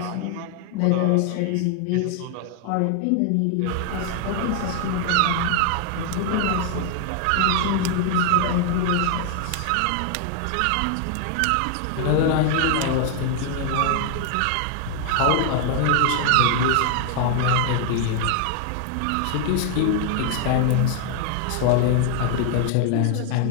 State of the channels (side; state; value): both; different; correlation 0.00